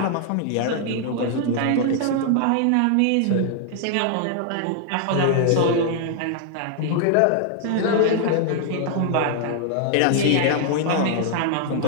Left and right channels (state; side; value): different; both; correlation 0.00